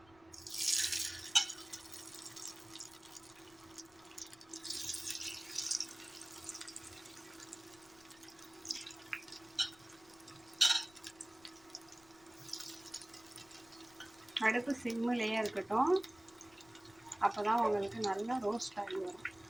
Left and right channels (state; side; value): noise; left; rumble, 27 dB below the sound